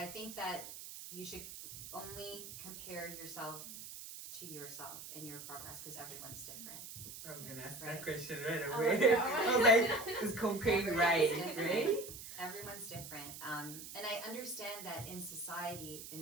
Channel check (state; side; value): noise; right; hiss, 11 dB below the sound